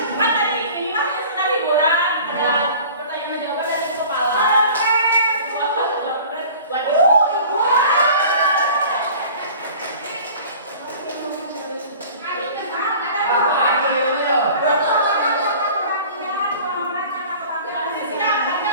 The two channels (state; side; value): inverted; both; correlation -0.44